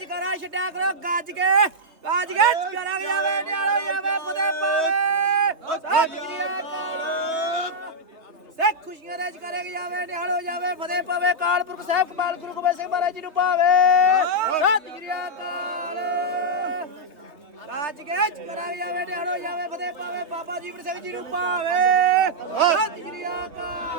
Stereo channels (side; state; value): left; late; 3.4 ms